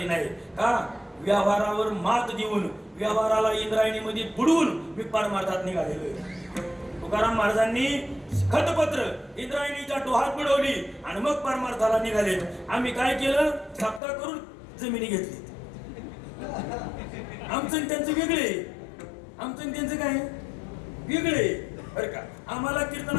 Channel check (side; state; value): right; drops out; at 14.0 s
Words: नाही का? व्यवहारावर मात देऊन व्यवहाराला इंद्रायणीमध्ये बुडवून मी परमार्थात निघालेलो आहे. तुकाराम महाराजांनी खतपत्र इंद्रायणीच्या डोहात बुडवली आणि मग परमार्थाला निघाले. आम्ही काय केलं? सप्ताह करून जमिनी घेतली. आमचं त्यांचं वेगळे, आमचं त्यांचं काय वेगळे बरं का? आम्हाला